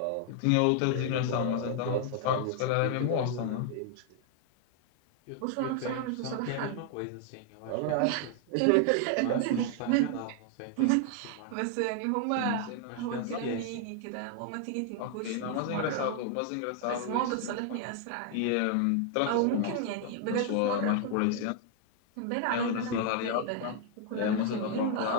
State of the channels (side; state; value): both; different; correlation 0.00